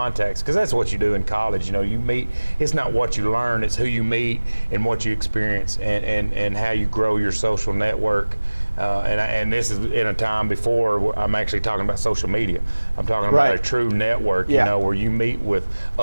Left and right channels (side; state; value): both; inverted; correlation -1.00